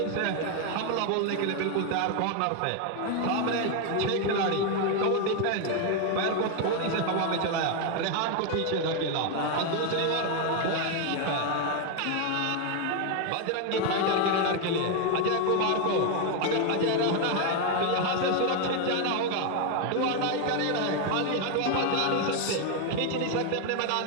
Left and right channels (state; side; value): different; both; correlation 0.01